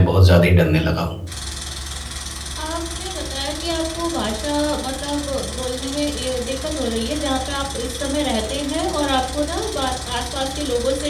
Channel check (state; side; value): identical; both; correlation 1.00